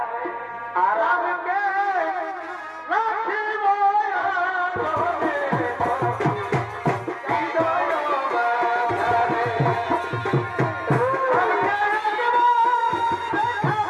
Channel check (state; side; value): identical; both; correlation 1.00